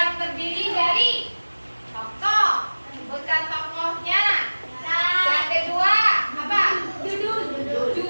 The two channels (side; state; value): both; inverted; correlation -1.00